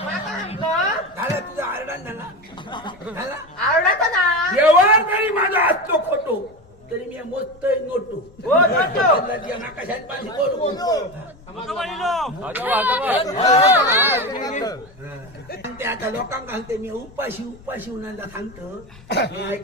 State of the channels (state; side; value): normal; both; correlation 0.22